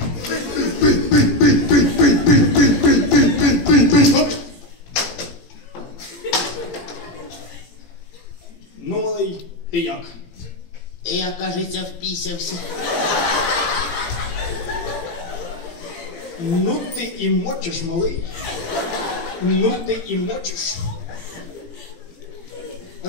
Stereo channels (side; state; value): right; late; 18 ms